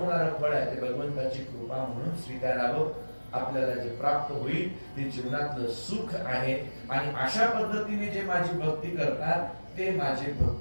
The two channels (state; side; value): inverted; both; correlation -1.00